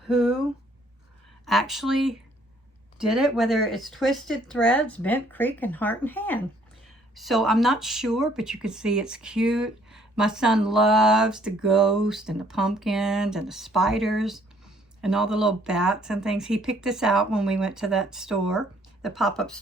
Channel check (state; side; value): normal; both; correlation 0.63